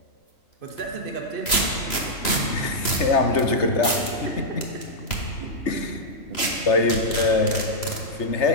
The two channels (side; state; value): right; late; 3.0 ms